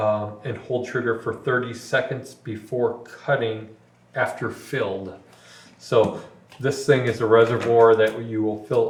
hold trigger for 30 seconds before cutting after filled. So this thing is a reservoir that you will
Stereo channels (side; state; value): both; identical; correlation 1.00